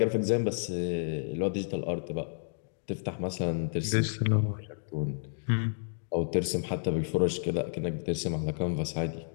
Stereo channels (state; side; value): silent; right; digital silence